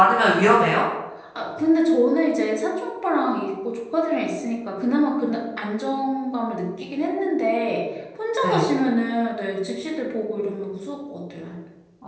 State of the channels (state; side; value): identical; both; correlation 1.00